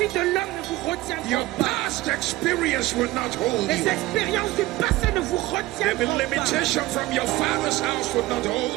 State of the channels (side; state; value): left; quieter; 18.0 dB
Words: de l'homme ne vous retiendront Your pas. past experience will not hold Les you. expériences du passé ne vous The retiendront pas. limitation from your father's house will not